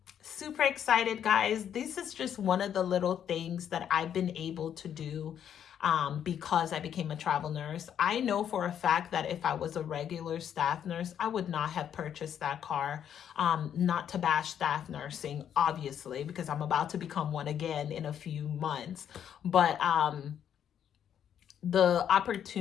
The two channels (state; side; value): quieter; right; 9.2 dB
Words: Super excited, guys. This is just one of the little things that I've been able to do because I became a travel nurse. I know for a fact that if I was a regular staff nurse, I would not have purchased that car. Not to bash staff nursing, obviously, because I'm about to become one again in a few months. But the